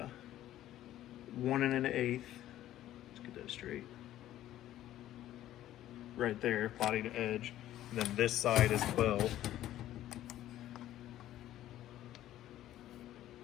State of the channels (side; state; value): right; quieter; 13.3 dB